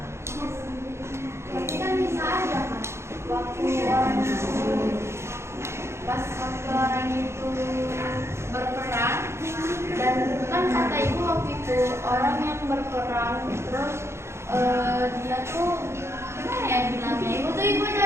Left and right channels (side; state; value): left; late; 0.13 ms